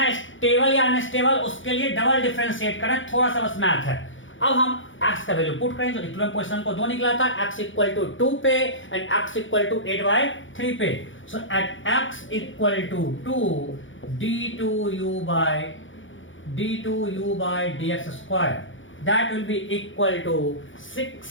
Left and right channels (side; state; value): right; late; 0.56 ms